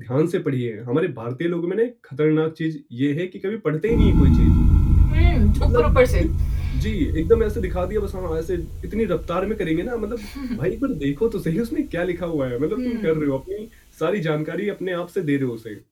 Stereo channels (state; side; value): identical; both; correlation 1.00